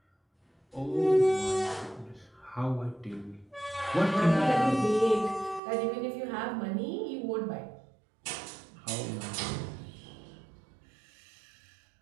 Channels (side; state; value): left; drops out; at 5.6 s